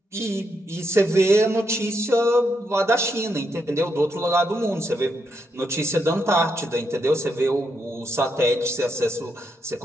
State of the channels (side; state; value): both; normal; correlation 0.80